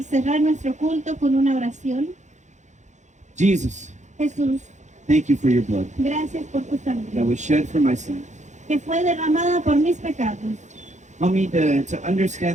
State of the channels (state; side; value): late; left; 0.35 ms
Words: cerrar nuestro culto con una oración. Jesus, Jesús, thank you for your blood gracias por tu that sangre was shed for my sins. que fue derramada por mis pecados. Help me to